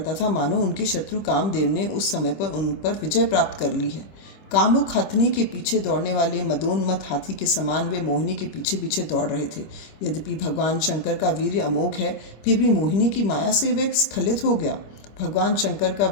था मानो उनके शत्रु कामदेव ने उस समय पर उन पर विजय प्राप्त कर ली है। कामुक हथनी के पीछे दौड़ने वाले मदोन्मत्त हाथी के समान वे मोहिनी के पीछे पीछे दौड़ रहे थे। यद्यपि भगवान शंकर का वीर्य अमोघ है, फिर भी मोहिनी की माया से वे स्खलित हो गया। भगवान शंकर का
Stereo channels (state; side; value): late; right; 25 ms